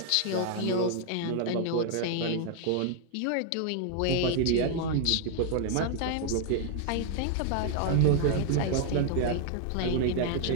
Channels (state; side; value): different; both; correlation 0.00